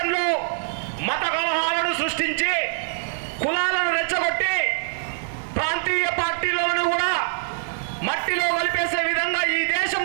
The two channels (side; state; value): left; silent; digital silence